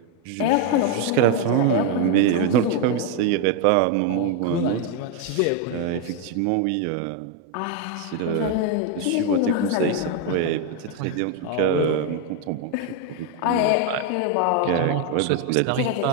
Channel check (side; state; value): both; different; correlation 0.01